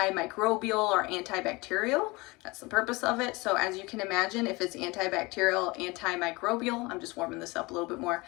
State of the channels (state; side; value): quieter; right; 24.0 dB